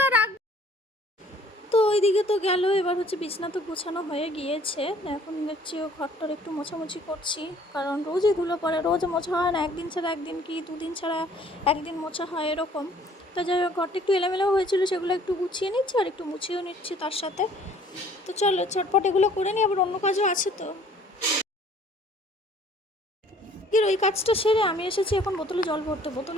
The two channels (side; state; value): both; normal; correlation 0.56